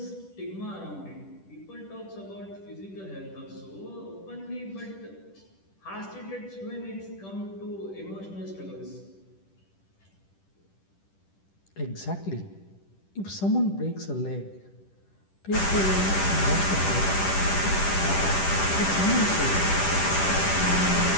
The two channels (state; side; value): late; right; 10 ms